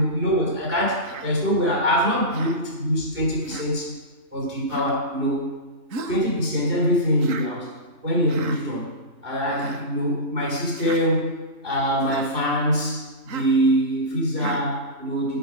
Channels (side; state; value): left; late; 2.7 ms